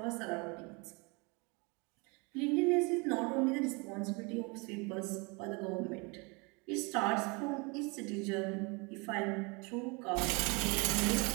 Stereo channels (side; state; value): left; quieter; 29.6 dB